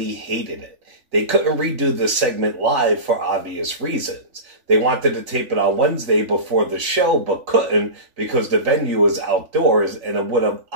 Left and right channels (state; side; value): late; left; 3.5 ms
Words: hated it. They couldn't redo the segment live for obvious reasons. They wanted to tape it on Wednesday before the show, but couldn't because the venue was outdoors and it would have